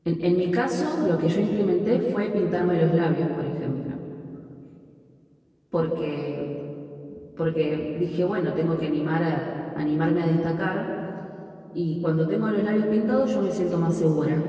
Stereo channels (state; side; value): identical; both; correlation 1.00